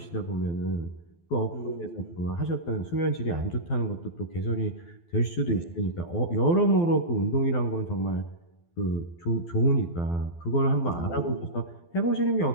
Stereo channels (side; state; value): right; late; 12 ms